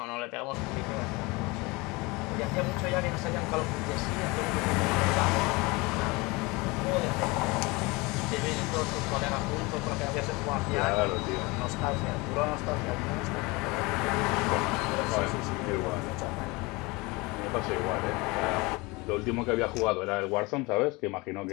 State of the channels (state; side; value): quieter; right; 24.8 dB